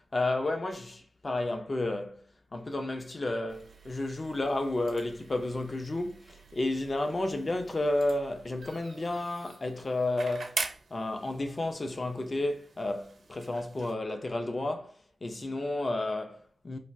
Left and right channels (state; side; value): normal; both; correlation 0.94